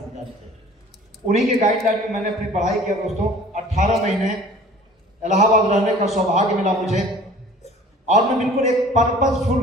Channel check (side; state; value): both; normal; correlation 0.47